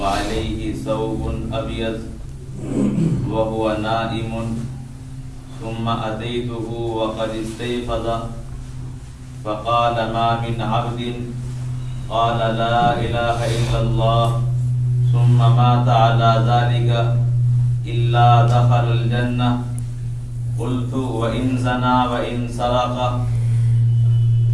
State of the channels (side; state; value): both; identical; correlation 1.00